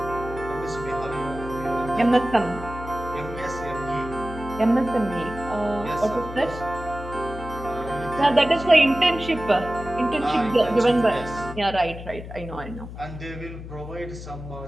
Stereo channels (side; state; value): left; noise; hum, 11 dB below the sound